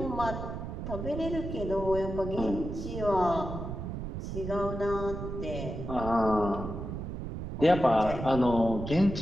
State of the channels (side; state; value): right; noise; rumble, 6 dB below the sound